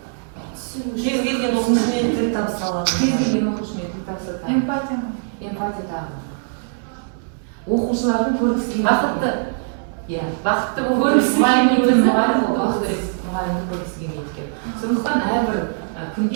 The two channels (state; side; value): silent; left; digital silence